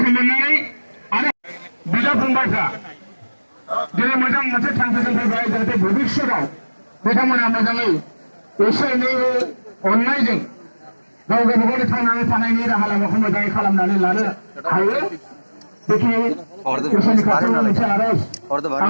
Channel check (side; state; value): both; inverted; correlation -1.00